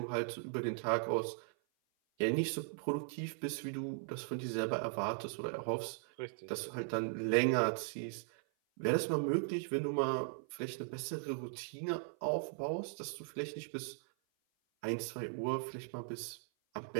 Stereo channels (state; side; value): silent; left; 52 dB below the other